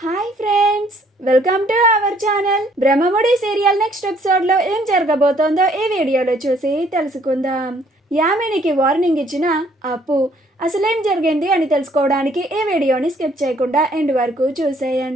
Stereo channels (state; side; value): normal; both; correlation 0.63